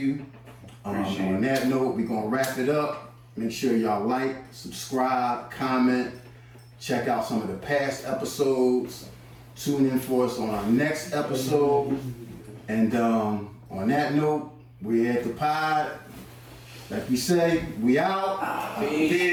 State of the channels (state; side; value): identical; both; correlation 1.00